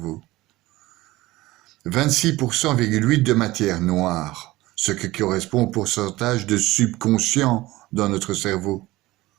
26,8% de matière noire, ce qui correspond au pourcentage de subconscient dans notre cerveau.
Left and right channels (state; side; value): quieter; left; 18.5 dB